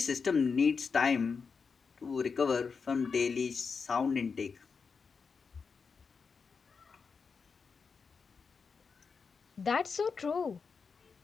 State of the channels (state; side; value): quieter; right; 5.3 dB